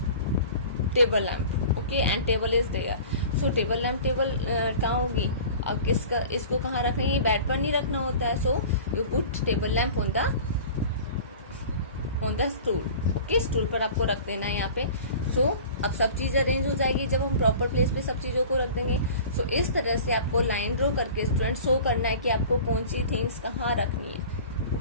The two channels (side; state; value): both; inverted; correlation -0.41